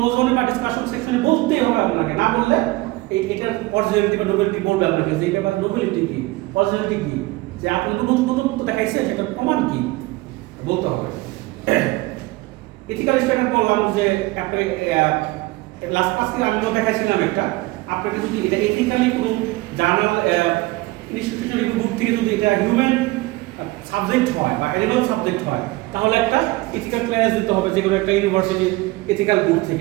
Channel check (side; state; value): left; quieter; 20.9 dB